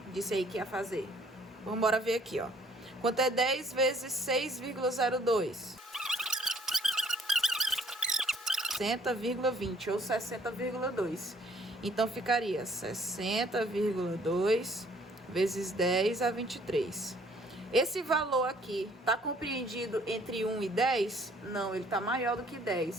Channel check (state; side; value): normal; both; correlation 0.61